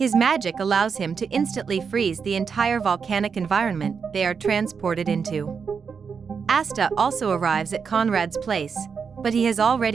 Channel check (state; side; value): quieter; left; 6.0 dB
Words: magic allows him to instantly freeze the entire volcanic environment they are transported into. Asta also arrives at Conrad's place, but he has